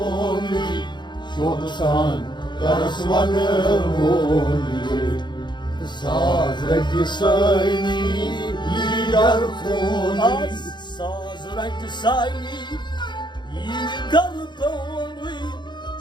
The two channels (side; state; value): right; late; 0.22 ms